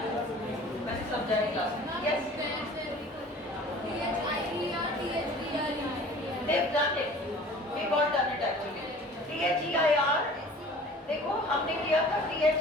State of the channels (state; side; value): normal; both; correlation 0.46